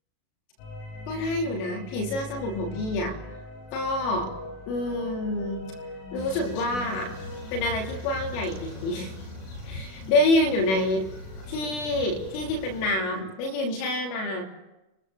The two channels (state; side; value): late; right; 37 ms